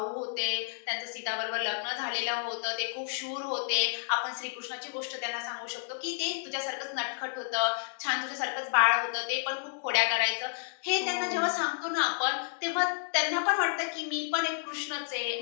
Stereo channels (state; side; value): silent; right; digital silence